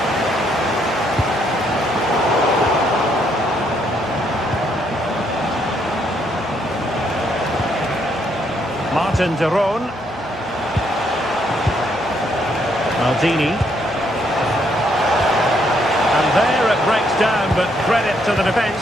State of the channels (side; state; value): right; noise; hum, 23 dB below the sound